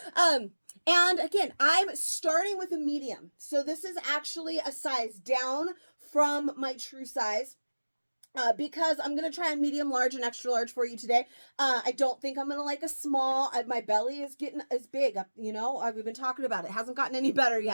And again, I'm starting with a medium. So this is actually a size down from my true size. Because I'm going to try a medium, large, and extra large for you today. I don't think I'm going to like a small. My belly is big. We've been talking about it. It hasn't gotten any better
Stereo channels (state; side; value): inverted; both; correlation -1.00